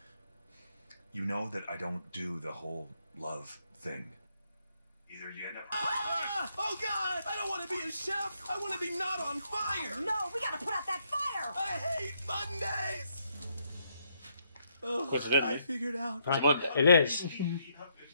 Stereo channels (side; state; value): both; inverted; correlation -0.75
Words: You know that I don't do the whole love thing. Either you end up. Oh God! I don't want to be a chef. I want to be not on fire. No, we gotta put out that fire! I hate Mondays. Oh, What's it in? I figured out. It's a Monday. It is.